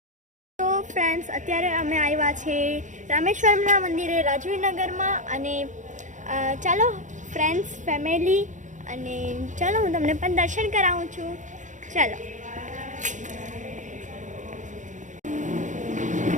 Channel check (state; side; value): late; left; 0.36 ms